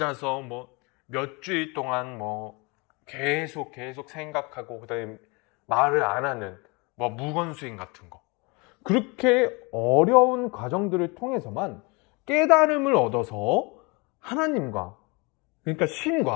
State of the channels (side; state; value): right; quieter; 28.6 dB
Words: 몇 주일 동안 계속 생각하고 그다음에 말을 안 하는 무건수행 같은 거. 그렇게 어려운 과정들을 통해서만 깨달음을 얻어서 하나님과, 그러니까